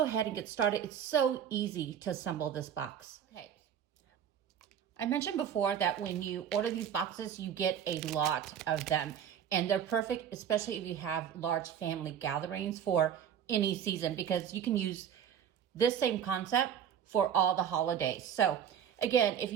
ahead and get started. It's so easy to assemble this box. Okay. I mentioned before that when you order these boxes, you get a lot of them, and they're perfect, especially if you have large family gatherings for any season, because you can use this same concept for all the holidays. So again, if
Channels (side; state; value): left; quieter; 8.9 dB